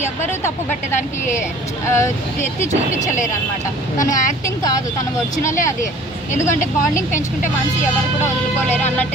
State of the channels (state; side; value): normal; both; correlation 0.49